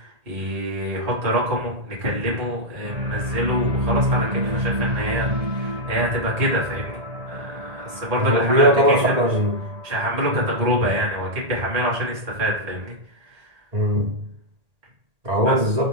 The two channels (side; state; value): left; late; 1.8 ms